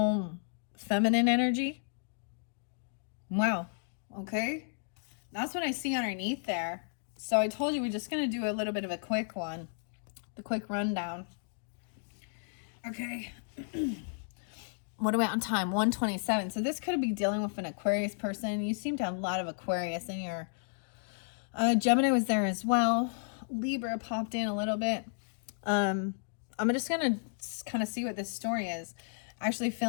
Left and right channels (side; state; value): right; silent; digital silence